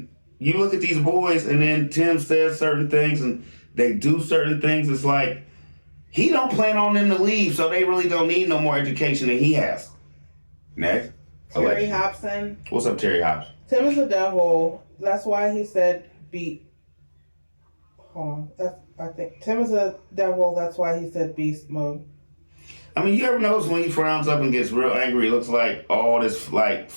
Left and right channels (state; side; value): inverted; both; correlation -1.00